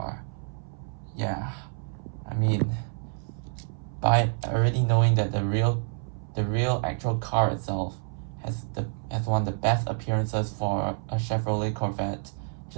Yeah, I mean, by already knowing that the real actual car itself has one of the best appearances for a Chevrolet Corvette,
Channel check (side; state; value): left; silent; 59 dB below the other